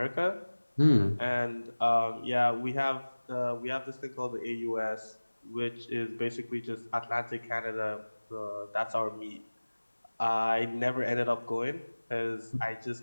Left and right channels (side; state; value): both; inverted; correlation -1.00